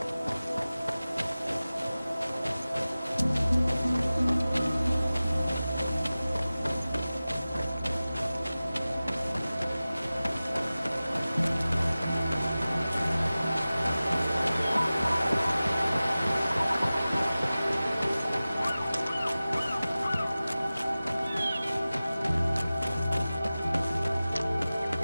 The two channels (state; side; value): inverted; both; correlation -0.97